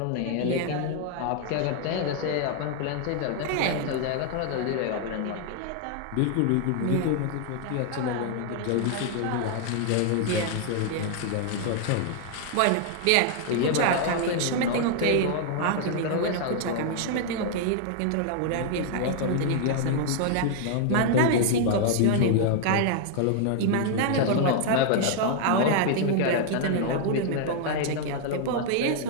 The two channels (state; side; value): different; both; correlation 0.00